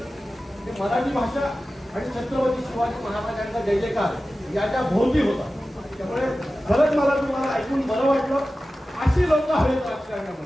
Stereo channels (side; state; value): both; normal; correlation 0.95